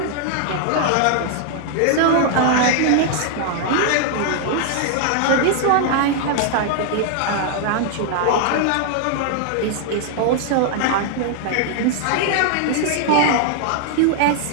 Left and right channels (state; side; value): different; both; correlation 0.00